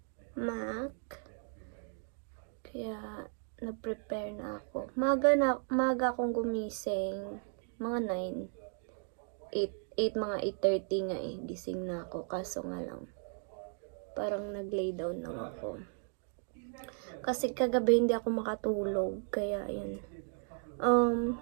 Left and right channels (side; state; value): left; silent; 54 dB below the other